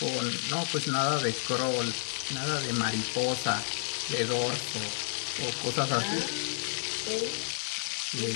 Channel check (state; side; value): silent; right; digital silence